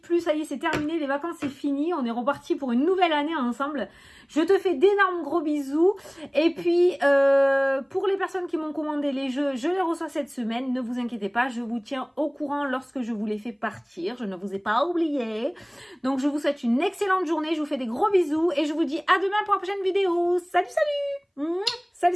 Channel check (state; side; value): identical; both; correlation 1.00